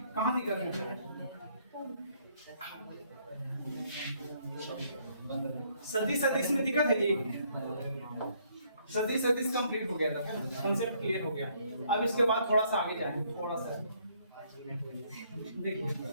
कहाँ दिक्कत है? सदिश सदिश में दिक्कत है जी? सदिश सदिश कंप्लीट हो गया था, कंसेप्ट क्लियर हो गया। अब इसके बाद थोड़ा सा आगे जाएंगे, थोड़ा सा देखिए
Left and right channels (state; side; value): inverted; both; correlation -0.67